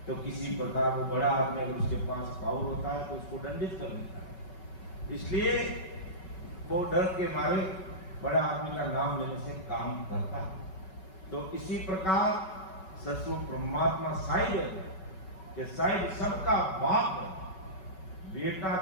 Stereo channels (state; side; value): late; right; 5.3 ms